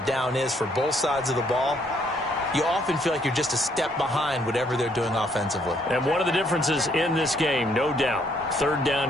down is for both sides of the ball, you often feel like you're just a step behind whatever they're doing offensively. And one of the differences in this game, no doubt, 3rd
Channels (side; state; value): both; normal; correlation 0.68